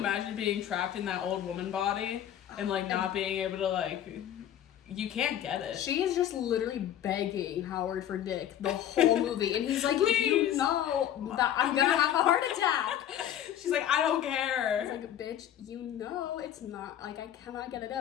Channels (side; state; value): right; quieter; 10.8 dB